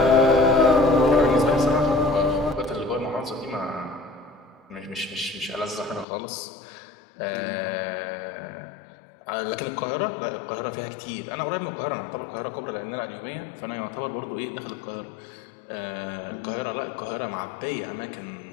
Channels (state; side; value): drops out; right; at 6.1 s